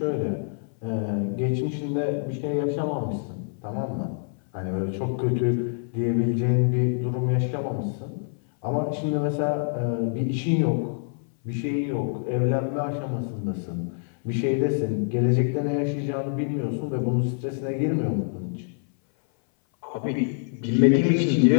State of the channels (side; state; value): right; silent; 58 dB below the other